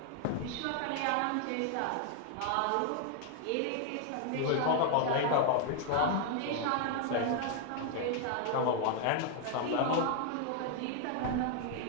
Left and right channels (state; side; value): different; both; correlation 0.00